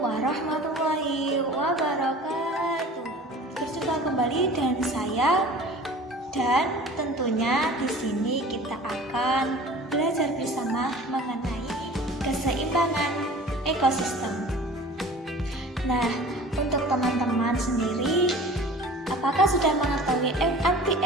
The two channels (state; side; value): normal; both; correlation 0.43